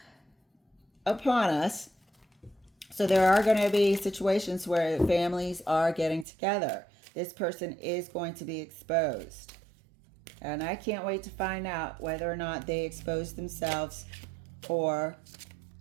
upon us. So there are going to be situations where families are getting together. This person is going to be exposed. And I can't wait to find out whether or not they expose themselves or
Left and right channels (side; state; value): left; drops out; at 6.2 s